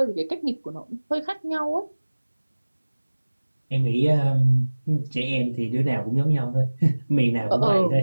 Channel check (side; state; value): both; inverted; correlation -1.00